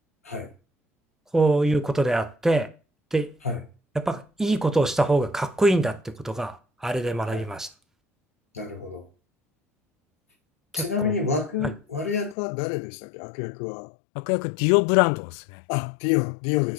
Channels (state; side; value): drops out; right; at 12.4 s